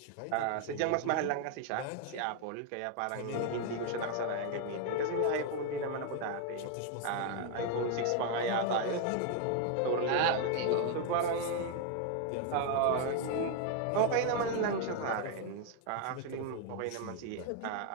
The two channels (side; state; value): both; different; correlation 0.00